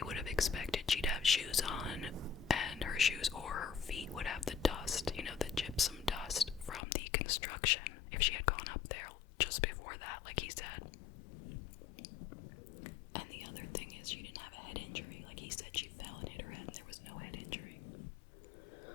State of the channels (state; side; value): drops out; right; at 6.8 s